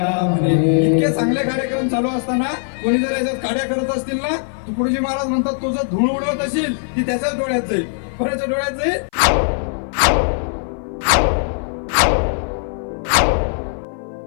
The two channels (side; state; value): right; silent; 57 dB below the other